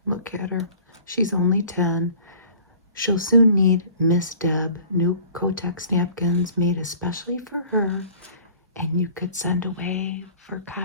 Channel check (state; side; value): inverted; both; correlation -0.48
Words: Look at her. She's only 10. She'll soon need Miss Deb new Kotex napkins made especially for her, and you could send away for